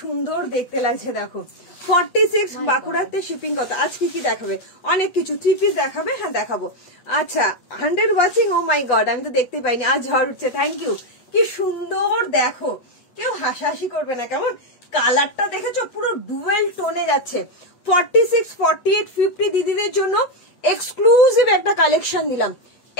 সুন্দর দেখতে লাগছে দেখো। 46 বাঁকুড়াতে শিপিং কত? আজ কি দেখাবে? অনেক কিছু, 3 পিস দেখাবে, হ্যাঁ দেখাবো। আচ্ছা 100 ওয়াচিং, ও মাই গড আমি তো দেখতে পাইনি, আজ ঝড় উঠছে, থ্যাংক ইউ। কি সুন্দর দেখো, কেউ হাসাহাসি করবে না কেমন? কালারটা দেখেছো পুরো ডুয়েল টোনে যাচ্ছে। 46, 48, 50 দিদিদের জন্য এক্সক্লুসিভ একটা কালেকশন দিলাম,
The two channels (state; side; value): late; right; 8.1 ms